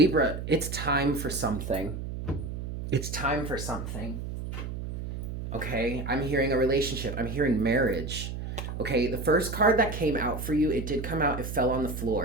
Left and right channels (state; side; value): noise; right; hum, 6 dB below the sound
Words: it's time for something. It's time for something. Okay, I'm hearing a relationship. I'm hearing marriage. Okay, the first card that came out for you, it did come out, it fell on the